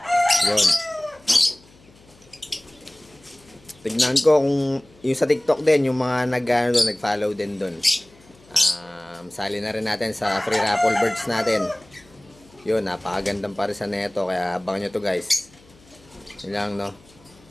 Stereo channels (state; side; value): noise; left; hum, 28 dB below the sound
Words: Yun. Tignan ko kung yung sa TikTok din, yung mga nag-follow din doon. Sali na rin natin sa free raffle birds natin. Yun, napakagandang parisan na ito, kaya abangan nyo to guys. Yun lang, no?